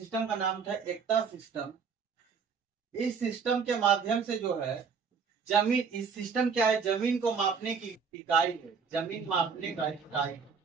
का नाम था एकता सिस्टम। इस सिस्टम के माध्यम से जो है जमीन, इस सिस्टम क्या है, जमीन को मापने की इकाई है, जमीन मापने का इकाई।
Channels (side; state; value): left; quieter; 5.9 dB